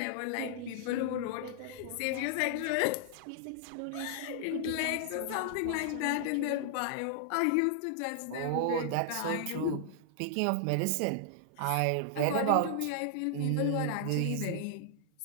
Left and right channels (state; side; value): different; both; correlation -0.01